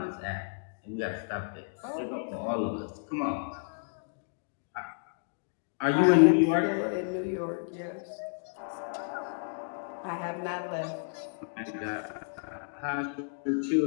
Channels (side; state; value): right; silent; digital silence